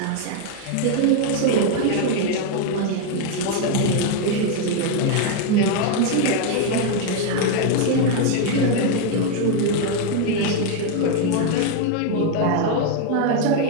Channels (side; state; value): both; different; correlation 0.01